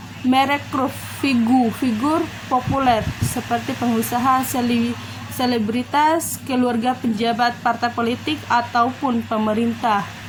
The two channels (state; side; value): identical; both; correlation 1.00